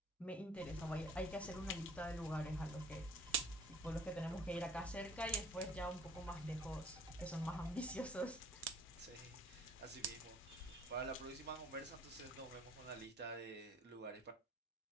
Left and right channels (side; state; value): both; normal; correlation 0.54